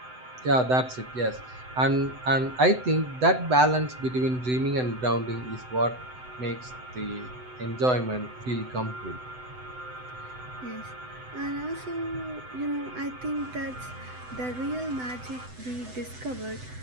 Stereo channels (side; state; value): left; late; 7.9 ms